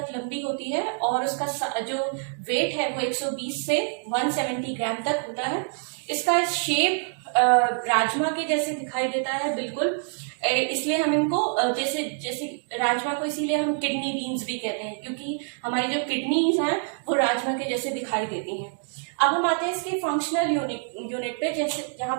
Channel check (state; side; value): silent; left; 57 dB below the other